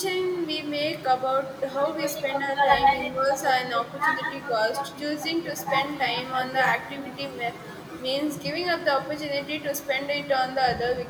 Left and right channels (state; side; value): identical; both; correlation 1.00